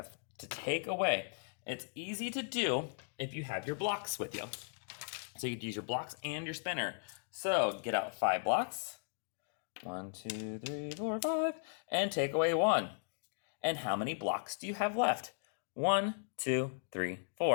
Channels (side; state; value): right; silent; digital silence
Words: to take away. It's easy to do if you have your blocks with you. So you could use your blocks and your spinner. So get out 5 blocks. 1, 2, 3, 4, 5. And take away 1. And how many blocks do you have left? 1, 2, 3,